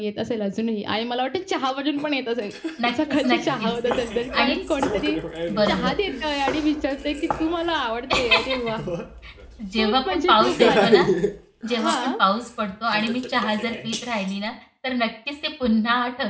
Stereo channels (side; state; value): both; identical; correlation 1.00